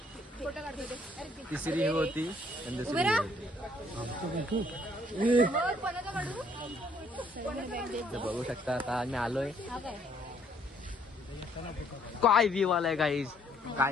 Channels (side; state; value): both; normal; correlation 0.65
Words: तिसरी ही होती आणि दुसरी बघू शकता आता आम्ही आलोय काय व्ह्यू आलाय गाईज